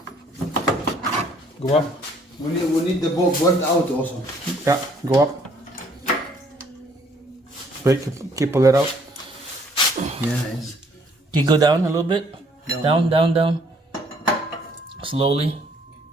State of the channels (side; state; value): both; normal; correlation 0.63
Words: Go up. We need the bolt out also. Yeah, go up. Wait, keep pull it out. Yes. Can you go down a little bit? Down. Slowly.